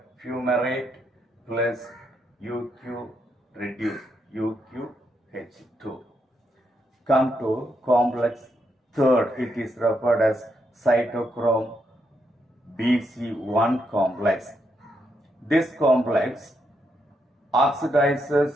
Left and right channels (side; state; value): both; normal; correlation 0.80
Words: plus UQ reduced, UQH2. Come to complex third, it is referred as cytochrome BC1 complex. This complex